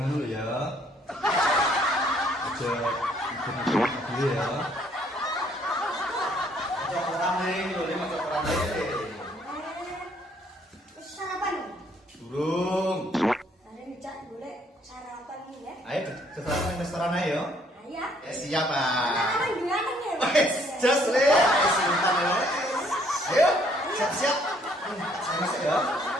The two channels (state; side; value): normal; both; correlation 0.65